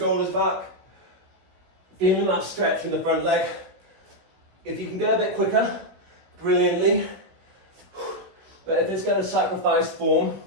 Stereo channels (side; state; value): left; late; 16 ms